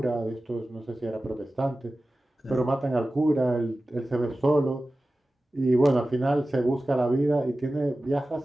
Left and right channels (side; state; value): both; normal; correlation 0.96